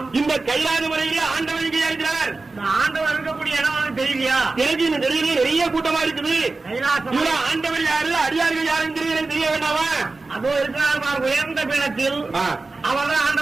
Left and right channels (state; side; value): quieter; left; 3.6 dB